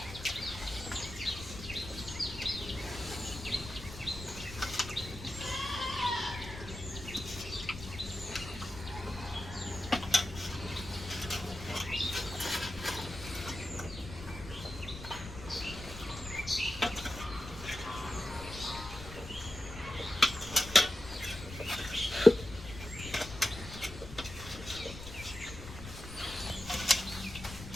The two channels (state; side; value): noise; left; rumble, 11 dB below the sound